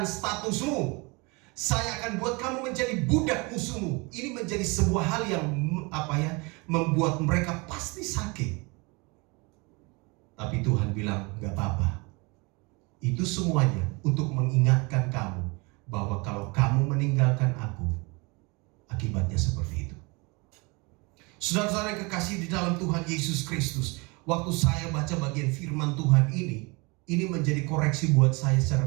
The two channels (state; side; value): quieter; left; 28.1 dB